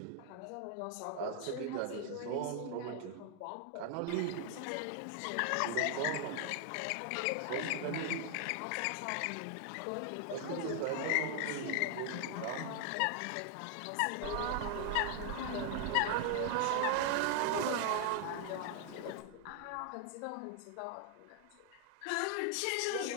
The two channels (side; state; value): both; different; correlation 0.00